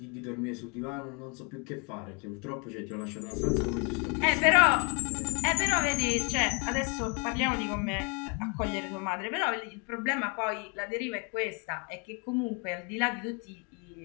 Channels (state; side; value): quieter; right; 34.0 dB